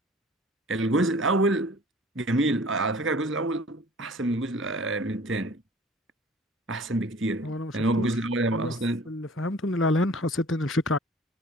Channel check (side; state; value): both; normal; correlation 0.48